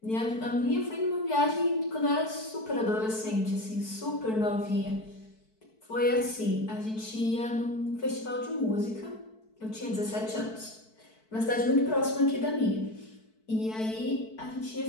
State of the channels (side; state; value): right; late; 4.6 ms